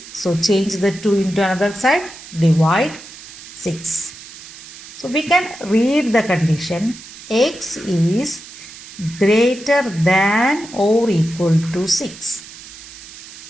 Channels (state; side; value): noise; right; hiss, 16 dB below the sound